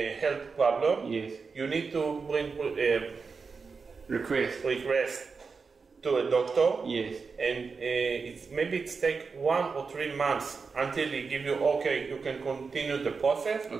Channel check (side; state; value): left; quieter; 4.9 dB